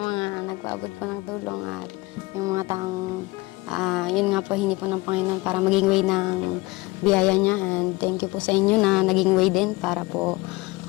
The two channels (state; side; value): quieter; right; 22.4 dB